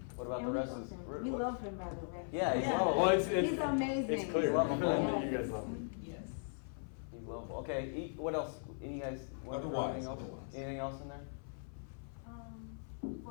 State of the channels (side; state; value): right; silent; 52 dB below the other